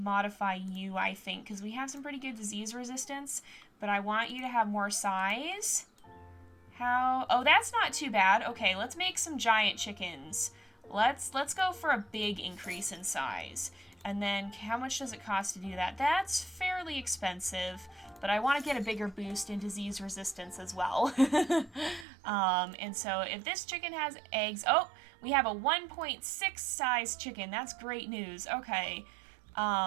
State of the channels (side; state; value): left; drops out; at 22.1 s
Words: you, I think, because we have some pretty good disease resistance. But I want you to have more size. How? Oh, that's not too bad. Okay, let's make some giant chickens. Let's go for a big increase in size. And then how much does it cost to do that? That's fairly expensive, but I want to get a bigger boost in disease resistance as well. And so if this chicken has eggs, oh, we have a 1.6 size chicken. That's great news. Okay.